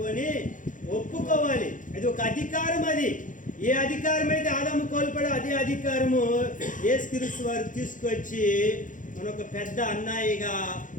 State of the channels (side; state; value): right; late; 0.38 ms